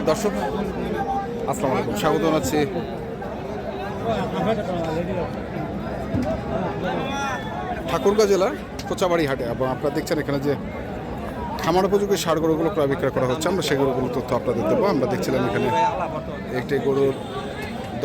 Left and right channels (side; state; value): both; identical; correlation 1.00